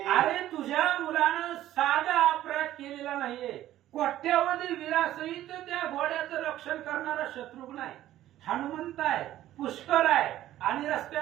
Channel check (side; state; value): left; quieter; 13.5 dB